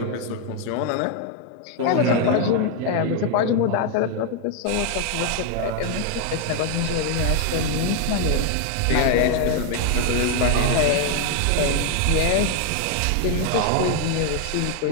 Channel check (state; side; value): different; both; correlation 0.00